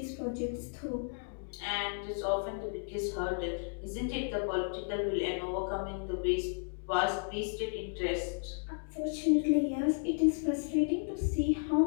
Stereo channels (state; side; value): silent; right; digital silence